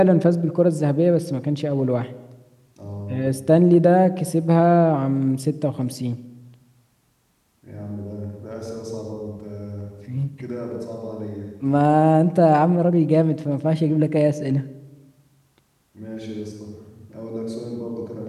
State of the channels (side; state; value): both; identical; correlation 1.00